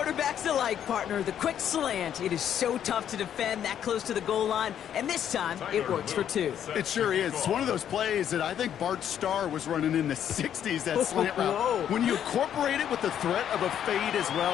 alike, partner. The quick slant. It is so tough to defend that close to the goal line, and this time it works for 2. It sure is. It's one of those plays that I think Bart Starr was running in the 60s, that slant route. Whoa. When you incorporate it with the threat of a fade as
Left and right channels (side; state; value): right; quieter; 9.7 dB